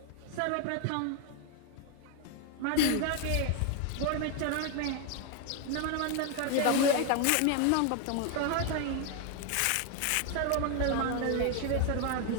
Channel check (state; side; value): different; both; correlation 0.01